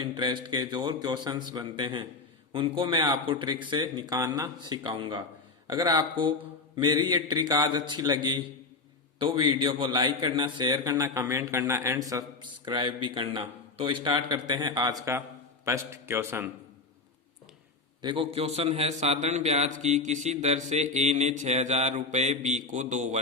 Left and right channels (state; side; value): quieter; right; 3.8 dB